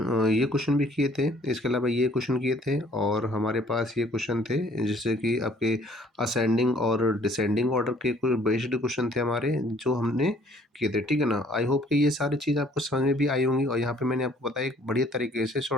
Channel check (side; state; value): both; normal; correlation 0.59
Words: भी किए थे, इसके अलावा ये क्वेश्चन किए थे, और हमारे पास ये क्वेश्चन थे जैसे कि आपके असेंडिंग और डिसेंडिंग ऑर्डर के कोई बेस्ड क्वेश्चन थे हमारे, जो हमने किए थे, ठीक है ना। आई होप कि ये सारी चीज़ आपको समझ में भी आई होंगी। और यहाँ पे मैंने आपको बताया एक बढ़िया तरीके से,